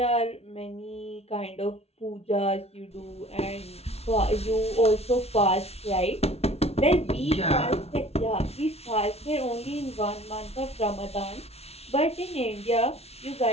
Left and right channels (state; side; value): late; right; 0.30 ms